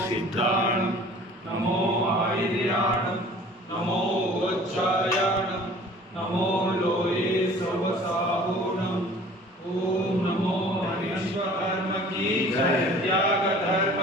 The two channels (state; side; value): normal; both; correlation 0.48